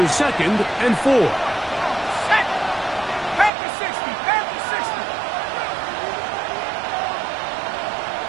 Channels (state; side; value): drops out; left; at 3.5 s